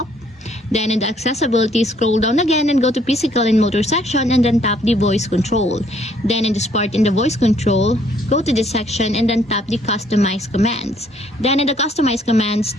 Then in the accessibility, scroll down again and go to physical and motor section and then tap the voice control. Then in this part in the voice control, go to this section and then tap the customize commands. Then in the customize commands,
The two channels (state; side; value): normal; both; correlation 0.64